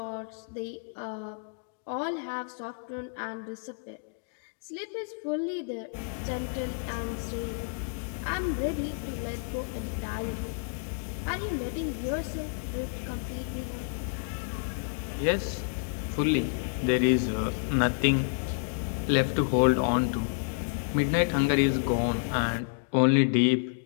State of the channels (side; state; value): right; silent; digital silence